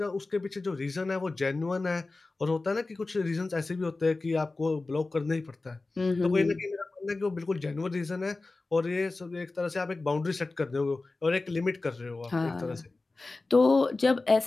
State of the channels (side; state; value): right; quieter; 3.4 dB